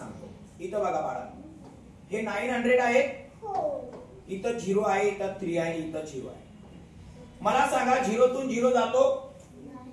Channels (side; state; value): both; identical; correlation 1.00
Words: इथं बघा बाळा हे 900 आहे इथं 0 आहे इथं 3 आहे इथं 0 आहे. मला सांगा 0 तून 0 जातो